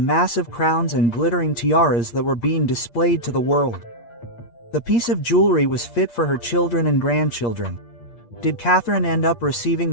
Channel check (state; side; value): late; right; 8.6 ms